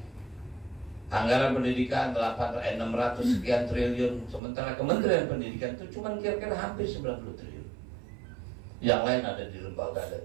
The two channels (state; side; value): drops out; left; at 4.4 s